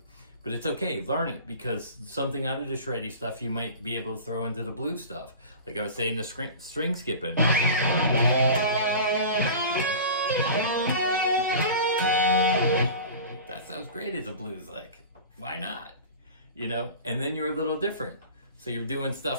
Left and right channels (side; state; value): both; inverted; correlation -0.37